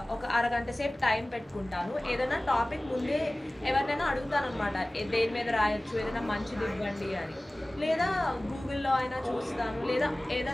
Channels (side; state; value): both; normal; correlation 0.98